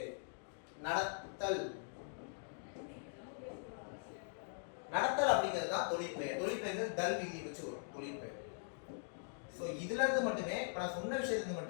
நடத்தல், நடத்தல் அப்படிங்கிறது தான் தொழிற்பெயர். தொழிற்பெயர் தல் விதி வச்சு வரும் தொழிற்பெயர். ஸோ இதுல இருந்து மட்டுமே, இப்போ நான் சொன்ன விஷயத்துக்கு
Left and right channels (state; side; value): silent; right; digital silence